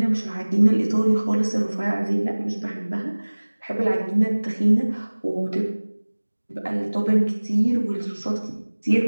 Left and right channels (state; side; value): inverted; both; correlation -1.00